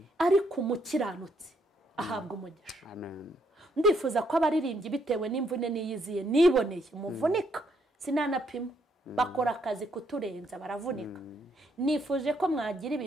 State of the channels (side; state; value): both; normal; correlation 0.72